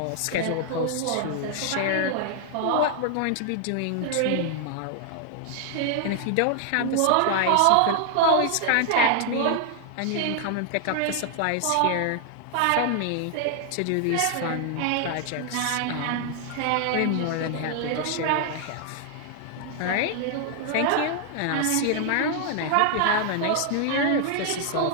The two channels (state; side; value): different; both; correlation 0.00